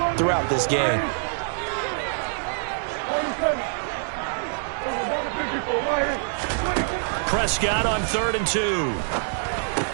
throughout this game. Prescott on 3rd and 2.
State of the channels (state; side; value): silent; left; digital silence